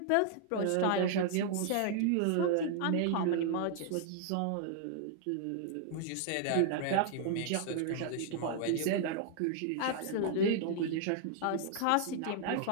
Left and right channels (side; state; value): both; different; correlation -0.01